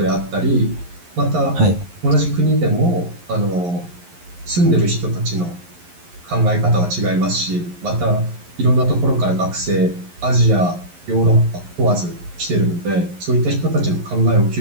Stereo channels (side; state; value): left; late; 11 ms